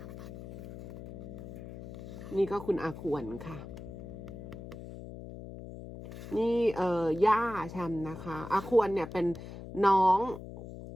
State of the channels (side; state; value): left; noise; hum, 11 dB below the sound